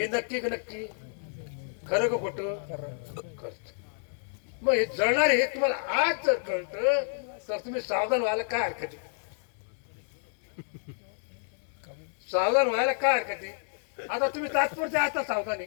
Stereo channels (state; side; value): silent; right; digital silence